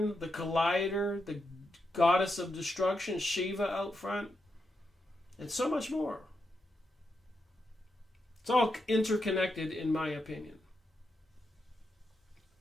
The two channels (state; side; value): normal; both; correlation 0.85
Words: the Collider, the goddess of destruction, Shiva, out front, and so much more. It's all interconnected, in my opinion.